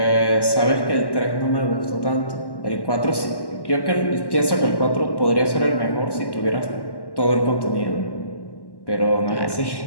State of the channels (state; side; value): late; right; 1.1 ms